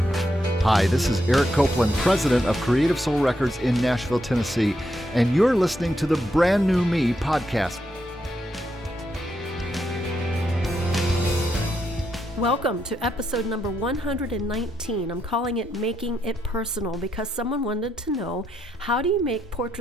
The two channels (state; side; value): normal; both; correlation 0.80